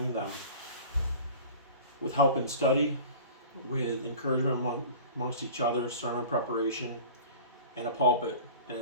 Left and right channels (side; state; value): both; inverted; correlation -0.40